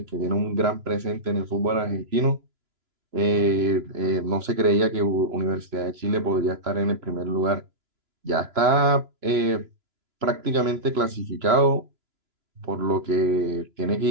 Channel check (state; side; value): late; left; 3.0 ms